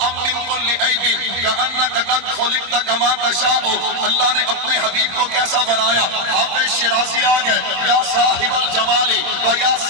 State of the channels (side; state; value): left; late; 26 ms